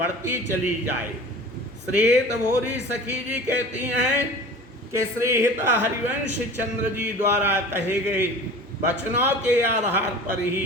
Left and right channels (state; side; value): normal; both; correlation 0.39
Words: चली जाए। श्रीहित भोरी सखी जी कहती हैं कि श्रीहित हरिवंश चंद्र जी द्वारा कहे गए वचनों के आधार पर